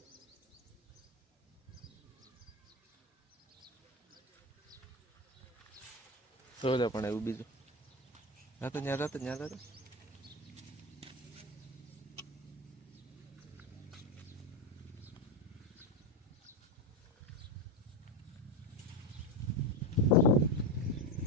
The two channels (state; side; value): normal; both; correlation 0.15